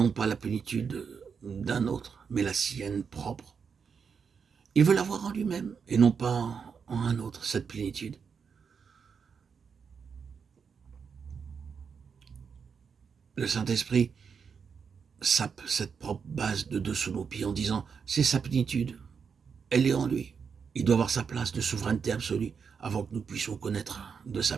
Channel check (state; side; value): quieter; left; 6.2 dB